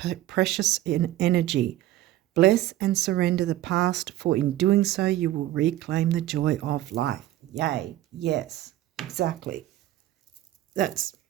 precious energy. Bless and surrender the past, for in doing so you will reclaim the joy of life. Yay, yes, exactly.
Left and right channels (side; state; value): left; quieter; 14.5 dB